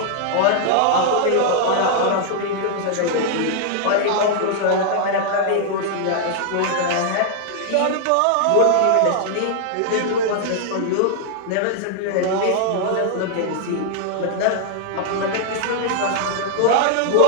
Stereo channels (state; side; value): different; both; correlation 0.00